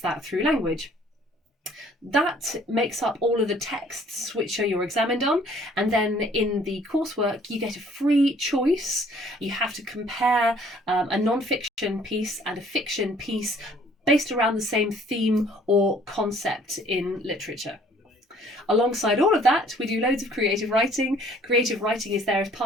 that through language. That makes up all of the texts which are you're examined on, and then in the coursework you get a free choice. You have to compare a non-fiction piece and a fiction piece based around the same theme or concept in literature. Alongside all of that, we do loads of creative writing. Creative writing is there as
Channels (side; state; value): both; normal; correlation 0.58